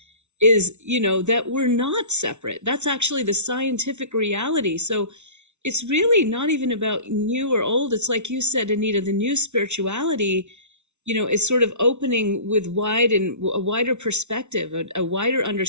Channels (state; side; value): late; left; 0.82 ms